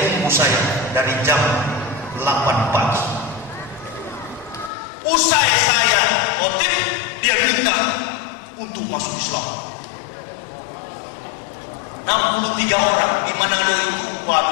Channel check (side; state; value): right; drops out; at 4.7 s